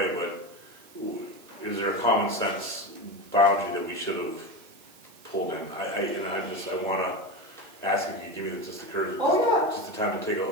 but is there a common sense boundary that we should have pulled in? I want to ask if you give me just the courage, just the time to take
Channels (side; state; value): right; noise; hiss, 24 dB below the sound